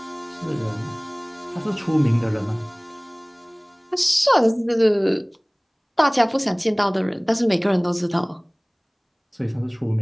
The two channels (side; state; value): both; identical; correlation 1.00